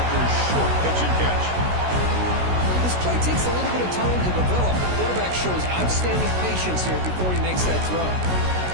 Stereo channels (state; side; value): late; left; 16 ms